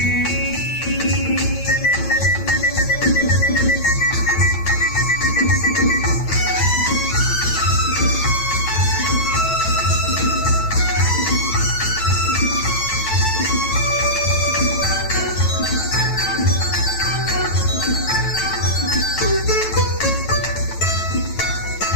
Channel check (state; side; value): late; right; 9.1 ms